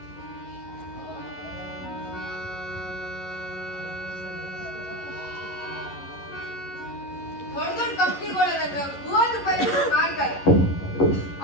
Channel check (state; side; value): late; right; 11 ms